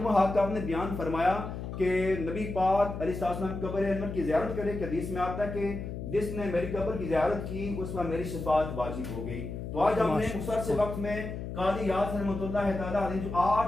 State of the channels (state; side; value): noise; left; hum, 7 dB below the sound